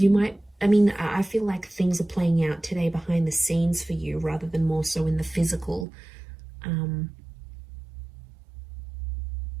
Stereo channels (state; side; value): drops out; left; at 5.9 s